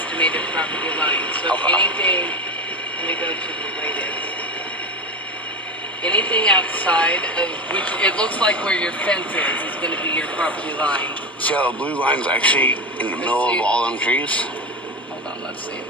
property line. So if Okay. anything, let me go to the latest. Anything outside of, which it looks like where your fence is going to be your property line. See how the blue line's actually in the middle of all them trees? Hold on, let's see.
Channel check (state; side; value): normal; both; correlation 0.20